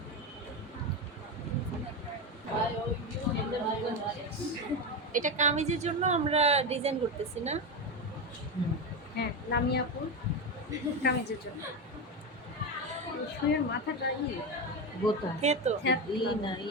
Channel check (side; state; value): both; normal; correlation 0.14